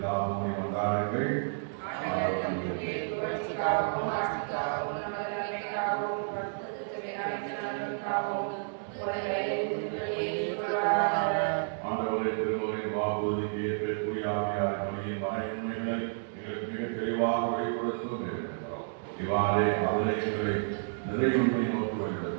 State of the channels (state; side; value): silent; left; digital silence